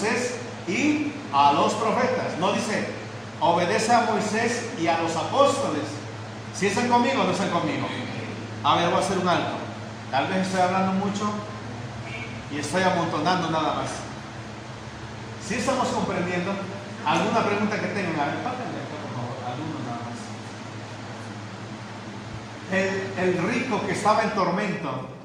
y a los profetas. No dice, obedece a Moisés y a los apóstoles. Si están conmigo o no están conmigo. A ver, voy a hacer un alto. Tal vez estoy hablando mucho y estoy amontonando nada más. Si estamos comprendiendo, ¿alguna pregunta que tengan? A ver, pásenle acá, por favor, alguno nada más. El rico que estaba en tormento,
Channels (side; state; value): both; identical; correlation 1.00